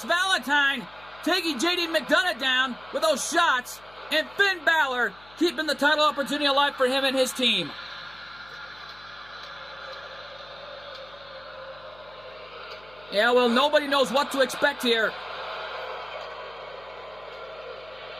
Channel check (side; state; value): left; noise; hum, 26 dB below the sound